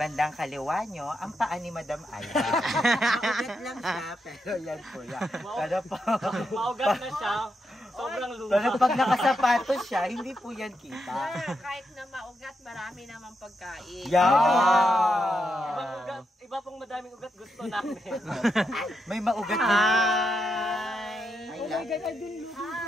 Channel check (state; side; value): normal; both; correlation 0.83